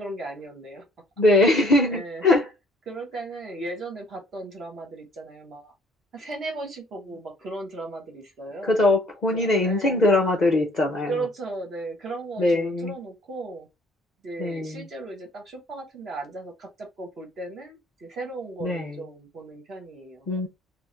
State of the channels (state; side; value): normal; both; correlation 0.59